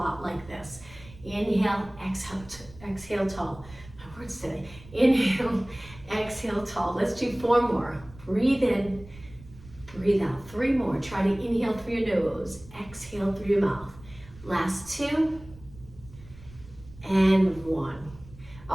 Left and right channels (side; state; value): right; noise; rumble, 20 dB below the sound